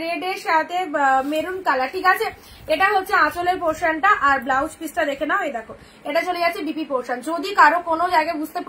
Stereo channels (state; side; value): identical; both; correlation 1.00